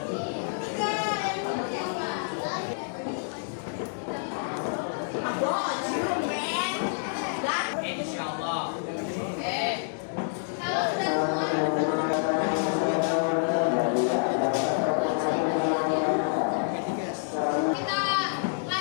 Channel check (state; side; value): silent; right; digital silence